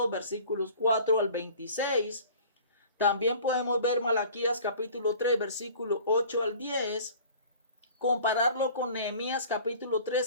versículos 4 al 26. También podemos ver Malaquías capítulo 3 versículo 8 al 10. Compararlo con Nehemías capítulo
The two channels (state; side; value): inverted; both; correlation -0.46